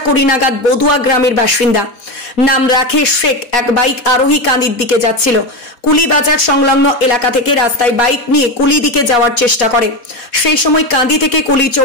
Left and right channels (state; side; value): late; right; 4.1 ms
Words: নাগাদ বদুয়া গ্রামের বাসিন্দা নাম রাকেশ শেখ এক বাইক আরোহী কান্দির দিকে যাচ্ছিল। কুলি বাজার সংলগ্ন এলাকা থেকে রাস্তায় বাইক নিয়ে কুলি দিকে যাওয়ার চেষ্টা করে। সেই সময় কান্দি থেকে কুলি